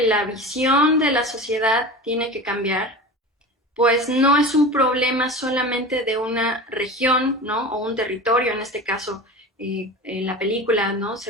la visión de la sociedad tiene que cambiar, pues no es un problema solamente de una región, ¿no? O un territorio, en este caso, en la película, ¿no?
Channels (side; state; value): both; normal; correlation 0.32